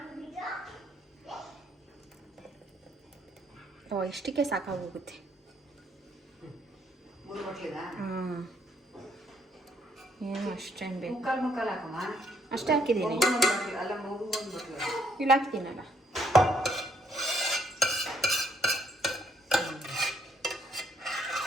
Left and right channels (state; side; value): normal; both; correlation 0.69